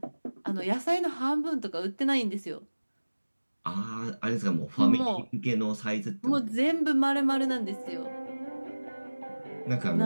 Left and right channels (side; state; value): both; inverted; correlation -1.00